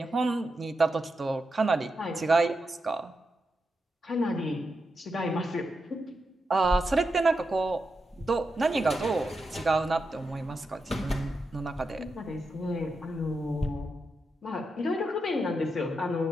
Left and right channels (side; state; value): both; normal; correlation 0.87